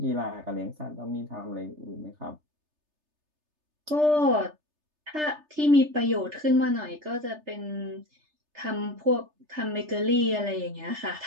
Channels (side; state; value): left; late; 3.3 ms